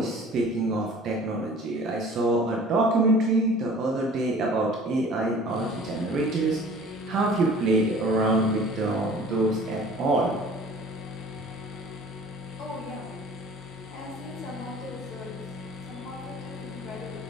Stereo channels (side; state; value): both; normal; correlation 0.47